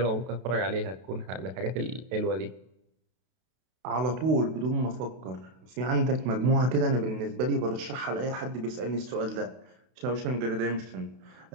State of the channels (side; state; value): left; late; 32 ms